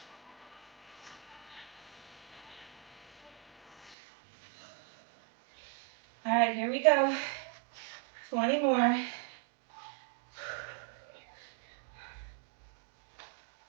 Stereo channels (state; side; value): drops out; left; at 4.0 s